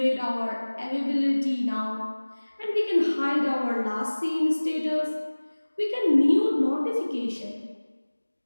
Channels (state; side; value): inverted; both; correlation -1.00